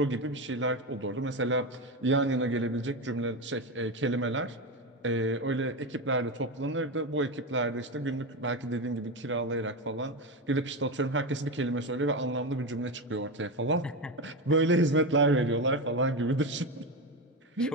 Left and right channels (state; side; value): normal; both; correlation 0.16